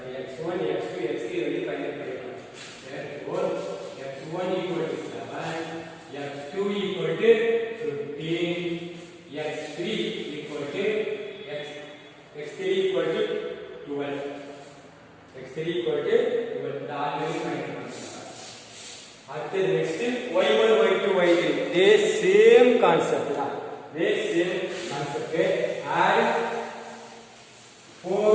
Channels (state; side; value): identical; both; correlation 1.00